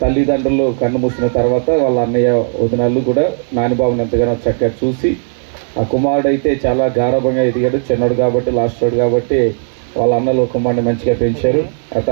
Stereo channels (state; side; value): silent; left; digital silence